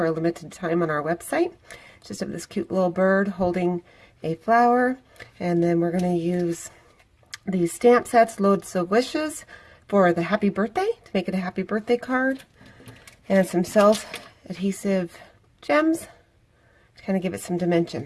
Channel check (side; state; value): both; identical; correlation 1.00